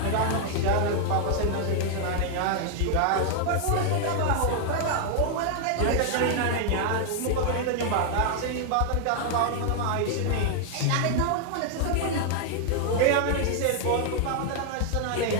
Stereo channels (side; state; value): both; different; correlation 0.00